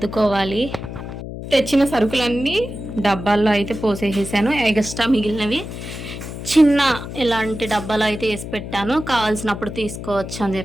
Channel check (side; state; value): left; noise; hum, 9 dB below the sound